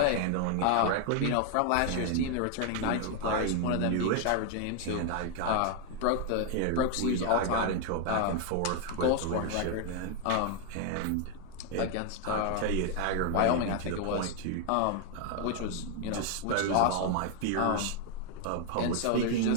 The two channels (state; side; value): different; both; correlation 0.00